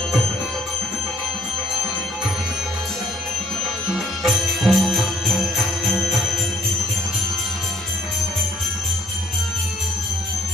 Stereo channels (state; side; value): noise; right; rumble, 27 dB below the sound